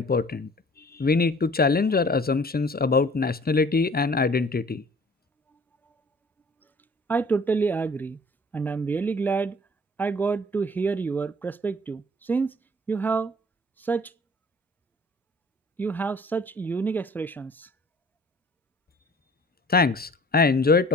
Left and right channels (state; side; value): normal; both; correlation 0.51